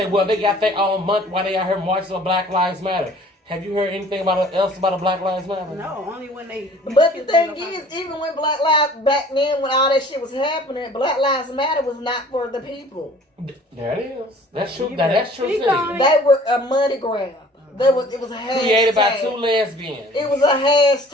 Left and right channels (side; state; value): both; normal; correlation 0.51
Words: well, they got their own month while they out here marching on Black Lives Matter. Have you heard anything else about a Black Lives Matter? No, only when they. But the thing is, even when Black Lives, back then when all that shit was happening, Black Lives Matter was not for the people. There it is. That's true. You That's better true speak too. on it. They were a money grab. It was a hashtag. Created by two lesbians. It was a